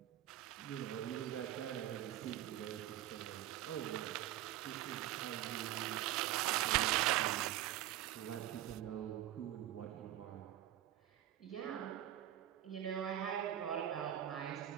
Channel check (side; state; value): left; quieter; 13.1 dB